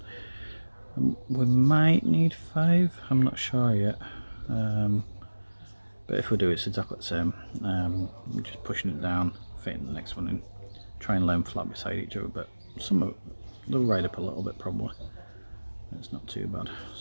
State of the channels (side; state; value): both; inverted; correlation -1.00